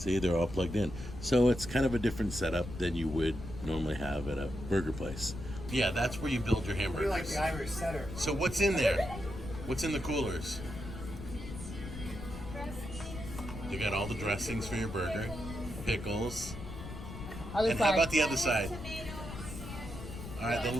they're all plugged in. So it's kind of a different setup than you would normally have at a burger place. Yeah, that's where you build your hamburgers. We're like the Irish setter. So what's in there? What's in the coolers? You got all the dressings for your burger, pickles. And how about the other side? All right,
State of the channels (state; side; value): noise; left; rumble, 10 dB below the sound